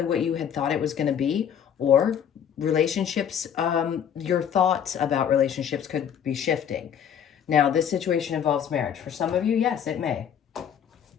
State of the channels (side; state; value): right; quieter; 8.6 dB